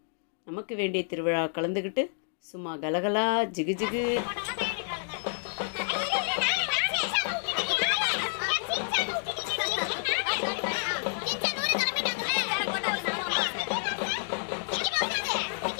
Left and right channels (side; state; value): right; silent; digital silence